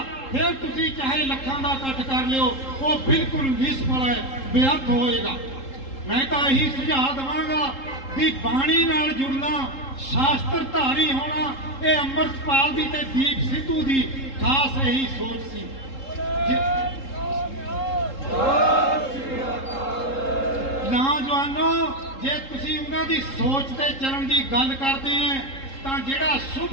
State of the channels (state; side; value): late; right; 3.7 ms